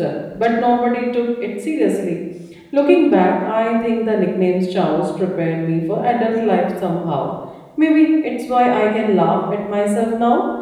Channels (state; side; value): identical; both; correlation 1.00